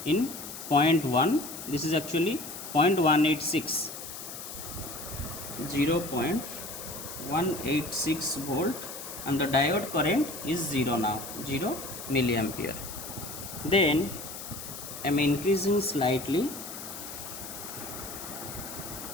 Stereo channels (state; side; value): noise; left; hiss, 10 dB below the sound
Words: in 0.1. This is actually 0.186, 0.186 volt, and the diode current is 0 now, 0 milliampere. Then I am increasing slightly,